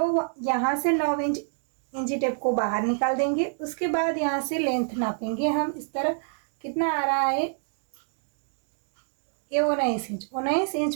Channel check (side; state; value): left; silent; digital silence